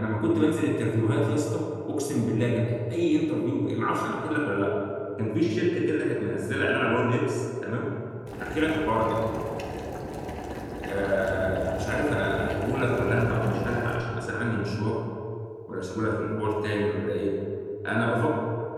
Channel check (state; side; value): identical; both; correlation 1.00